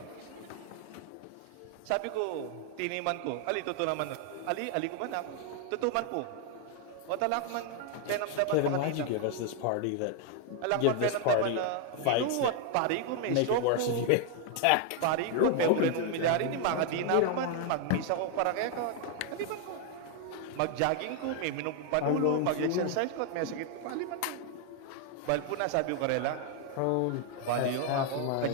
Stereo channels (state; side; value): different; both; correlation 0.00